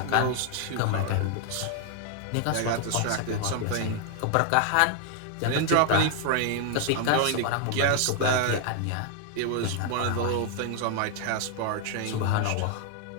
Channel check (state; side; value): different; both; correlation 0.00